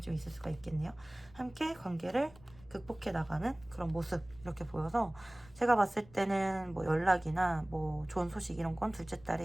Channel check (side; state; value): left; noise; rumble, 23 dB below the sound